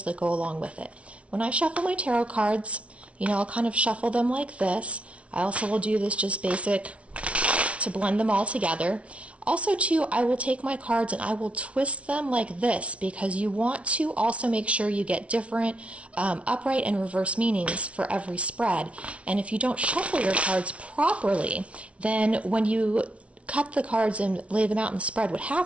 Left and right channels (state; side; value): late; left; 0.062 ms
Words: that go along with it. When I shuffle my tarot cards, I'll kind of shuffle them like this. I also will do this just basic to blend them all together. Also, too, I will take my cards and I will twist them like this because you want to also make sure you get different upright and reverse meanings for every spread. And if you don't shuffle your cards properly, then when you cut the cards and lay them out in the spread, what